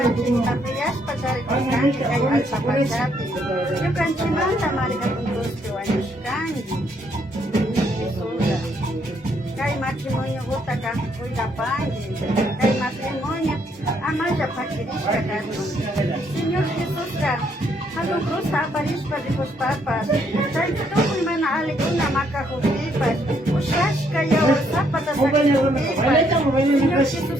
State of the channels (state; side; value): normal; both; correlation 0.71